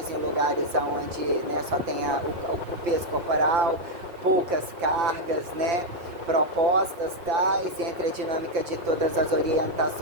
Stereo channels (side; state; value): left; late; 5.7 ms